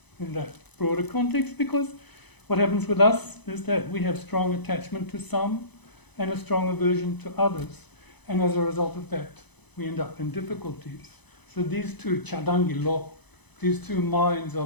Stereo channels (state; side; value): late; right; 0.99 ms